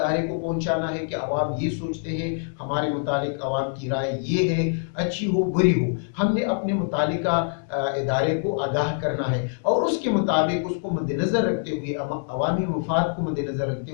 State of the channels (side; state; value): right; silent; 62 dB below the other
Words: کو پہنچانا ہے کہ عوام یہ سوچتے ہیں، ہمارے متعلق عوام کی رائے یہ ہے، اچھی ہو بری ہو، ہم نے اپنے متعلقہ ادارے کو آگاہ کرنا ہے، اور اس کے مطابق اس کو مد نظر رکھتے ہوئے، عوامی مفاد کو مد نظر رکھتے